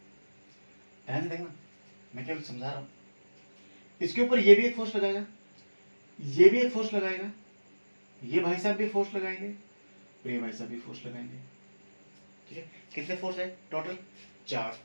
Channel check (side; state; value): both; inverted; correlation -1.00